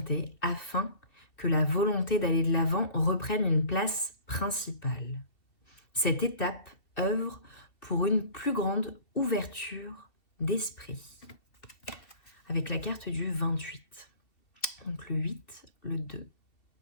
afin que la volonté d'aller de l'avant reprenne une place principale. Cette étape œuvre pour une plus grande ouverture d'esprit. Avec la carte du 28. Donc le 8, le 2,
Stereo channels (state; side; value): late; right; 2.7 ms